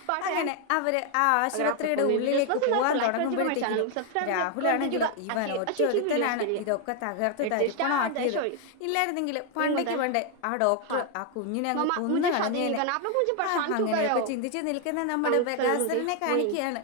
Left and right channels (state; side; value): different; both; correlation 0.01